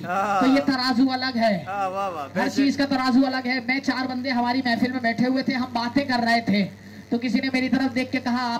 ये तराजू अलग है। हर चीज का तराजू अलग है। मैं 4 बंदे हमारी महफिल में बैठे हुए थे, हम बातें कर रहे थे, तो किसी ने मेरी तरफ देख के कहा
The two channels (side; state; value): both; identical; correlation 1.00